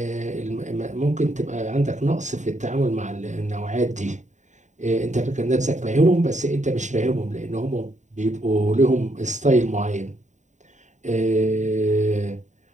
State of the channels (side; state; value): left; late; 0.35 ms